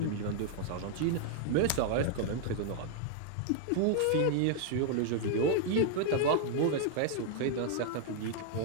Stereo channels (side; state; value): both; different; correlation 0.00